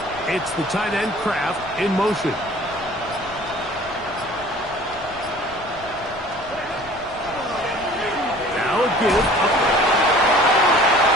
It's the tight end Kraft in motion. Now a give up.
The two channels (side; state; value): left; noise; rumble, 20 dB below the sound